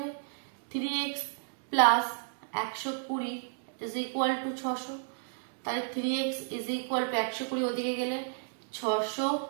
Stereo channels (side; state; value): left; silent; digital silence